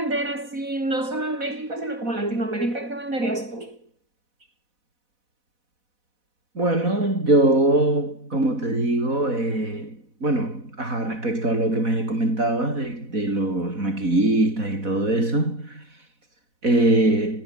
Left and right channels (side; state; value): left; late; 4.1 ms